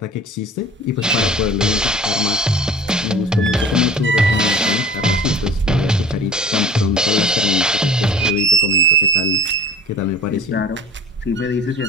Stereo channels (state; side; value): normal; both; correlation 0.42